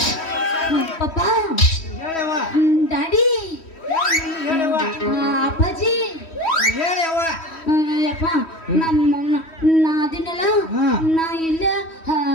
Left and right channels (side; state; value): right; late; 3.1 ms